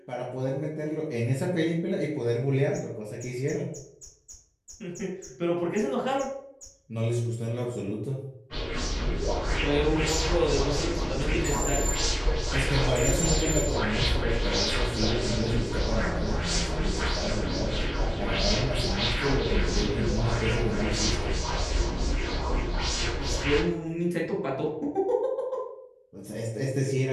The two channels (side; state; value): both; identical; correlation 1.00